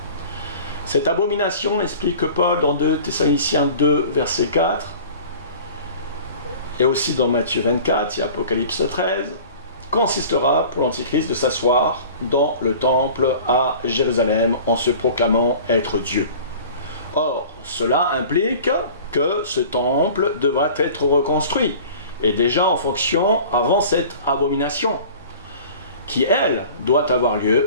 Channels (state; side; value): inverted; both; correlation -0.43